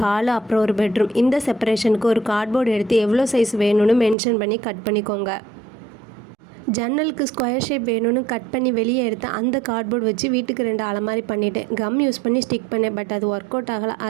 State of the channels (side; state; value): left; drops out; at 4.2 s